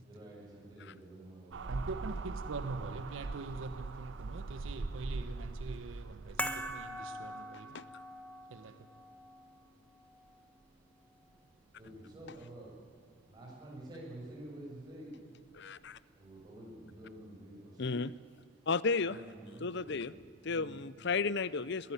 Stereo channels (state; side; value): normal; both; correlation 0.13